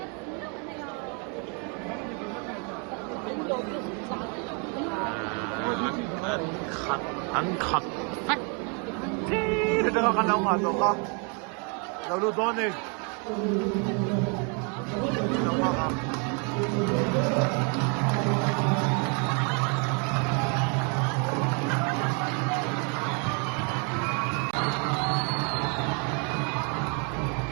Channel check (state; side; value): quieter; left; 35.6 dB